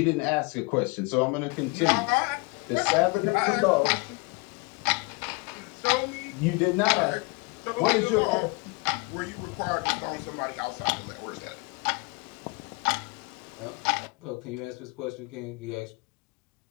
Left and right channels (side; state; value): right; quieter; 28.5 dB